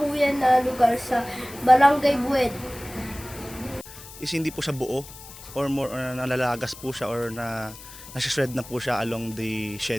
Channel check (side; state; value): left; noise; hiss, 16 dB below the sound